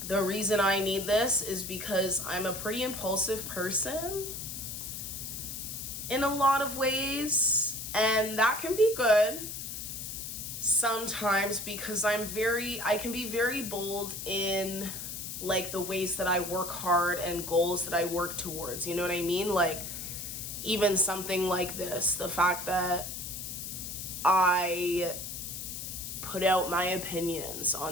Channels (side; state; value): left; noise; hiss, 7 dB below the sound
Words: The reason I need this is because I'm a pretty impulsive person in a lot of ways, and that can be good sometimes because I can be very bold in like the ways that I work hard and goals that I work towards. You know what I mean? Like, even something like this, the fact that I put out my opinions